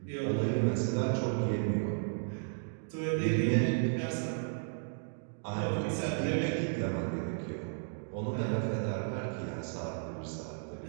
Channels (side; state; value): left; silent; digital silence